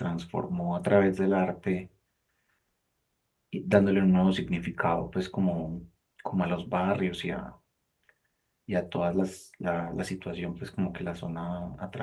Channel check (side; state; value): both; identical; correlation 1.00